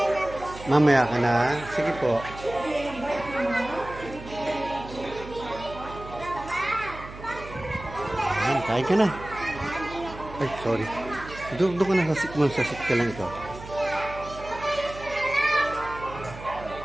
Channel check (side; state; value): right; noise; hum, 14 dB below the sound